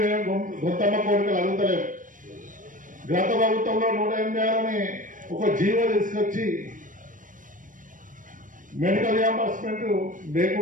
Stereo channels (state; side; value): late; left; 0.38 ms